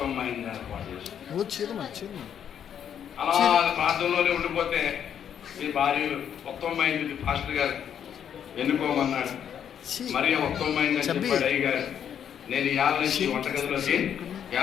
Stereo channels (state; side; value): quieter; right; 8.9 dB